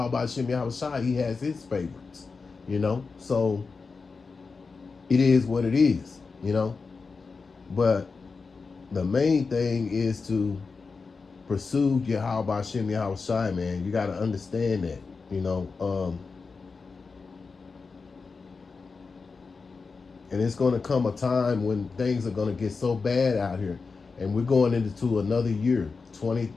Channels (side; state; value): right; quieter; 4.6 dB